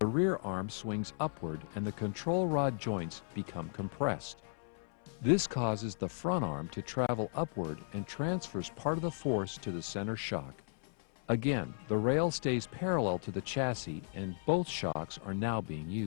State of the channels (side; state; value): right; silent; 54 dB below the other